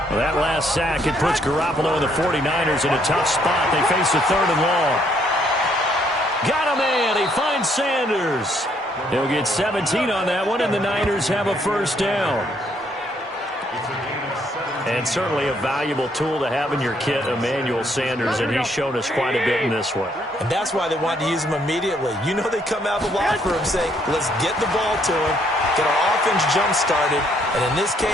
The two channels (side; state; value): both; normal; correlation 0.69